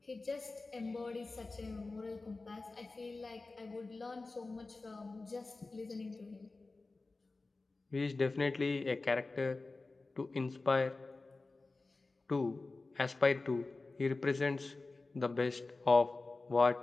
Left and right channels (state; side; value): quieter; right; 3.5 dB